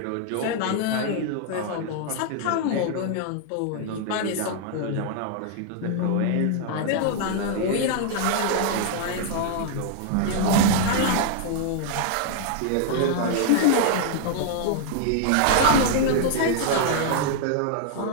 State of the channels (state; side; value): different; both; correlation 0.00